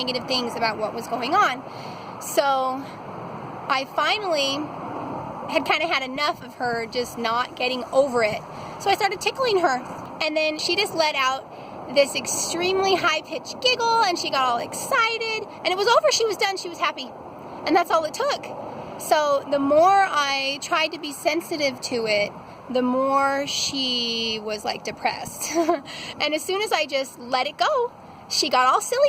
things about what was going on. So I finally had kind of had enough of her just not getting over it. So I started tickling her, and then she just let out this extremely high-pitched giggle, and she got all excited, and it was over. She was done. She was happy, and that's all it took. So the more I tried to be sensitive to it, the more she was like depressed. And as soon as I just let it go, she got all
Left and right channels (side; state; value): both; identical; correlation 1.00